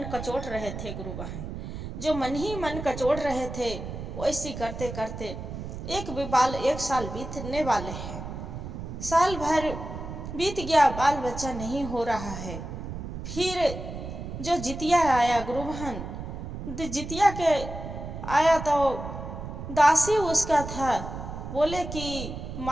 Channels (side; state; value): right; noise; rumble, 8 dB below the sound